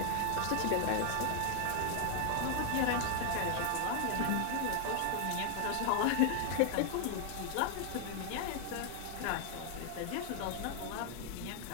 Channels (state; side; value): different; both; correlation 0.00